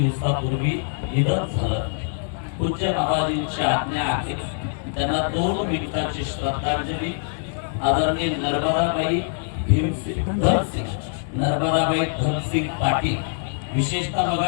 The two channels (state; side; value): silent; right; digital silence